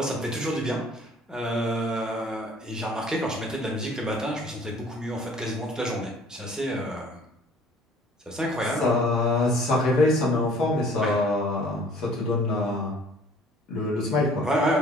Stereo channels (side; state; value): both; normal; correlation 0.54